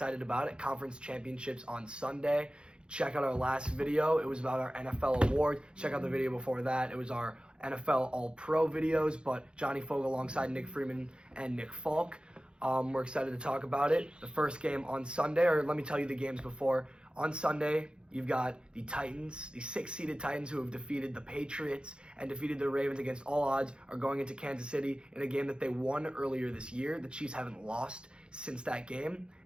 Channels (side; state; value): left; late; 0.053 ms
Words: about it. Conference championships on Sunday. Check out our last video. It was about our NFL award. Check out the video before that. It was our NFL All-Pro videos, but Johnny Fogle alongside Nick Freeman and Nick Falk. We're excited to talk about it. The first game on Sunday, or let me tell you the games before. On Sunday, you've got the Titans, the 6-seeded Titans who have defeated the Patriots and defeated the Ravens against all odds, are going into Kansas City in a game that they won earlier this year. The Chiefs haven't lost since that game.